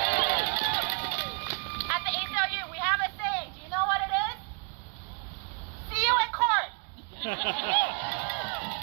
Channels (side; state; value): left; quieter; 37.0 dB